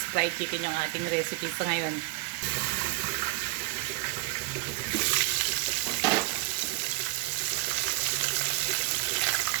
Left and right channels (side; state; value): left; quieter; 22.6 dB